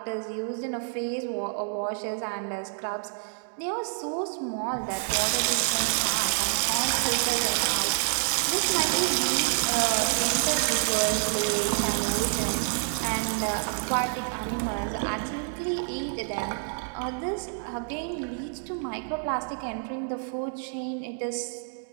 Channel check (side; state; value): left; silent; 59 dB below the other